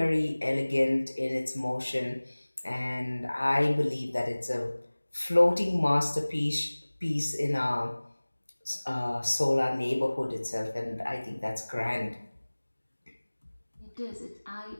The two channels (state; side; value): inverted; both; correlation -1.00